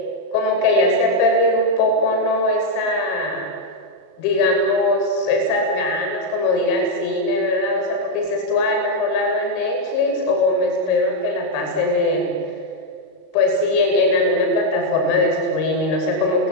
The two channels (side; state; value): right; late; 38 ms